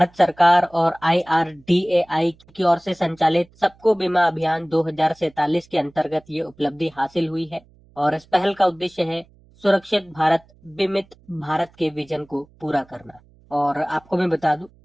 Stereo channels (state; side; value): noise; right; hum, 29 dB below the sound